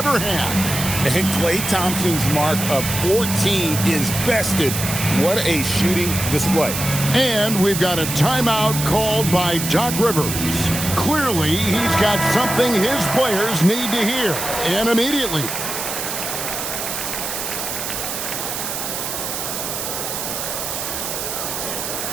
had. And Klay Thompson's mark of 14 is bested. What a shooting display. And we've got a timeout called by Doc Rivers. Clearly, he's got something his players need to hear, and immediately.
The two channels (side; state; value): right; noise; hiss, 4 dB below the sound